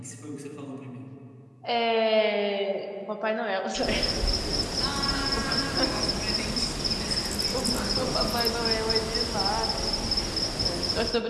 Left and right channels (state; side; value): identical; both; correlation 1.00